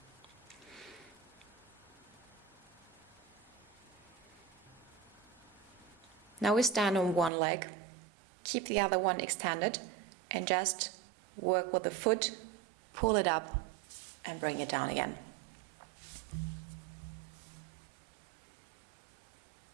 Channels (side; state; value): left; drops out; at 7.3 s